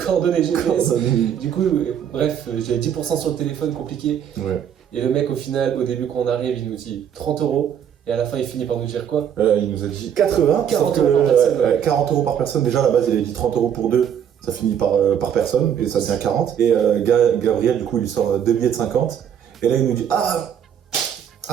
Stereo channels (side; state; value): left; quieter; 8.9 dB